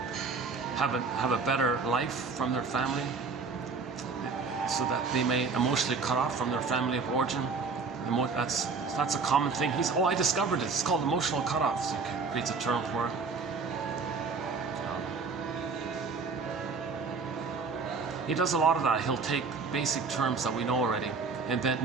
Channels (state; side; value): quieter; left; 4.7 dB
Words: have a better life from their family, so that they may emotionally cut off from their family of origin, that's a common thing. I discovered it. It's called emotional cutoff. So he creates a term for it. He does a lot of that. He'll take basic terms that we know already, invent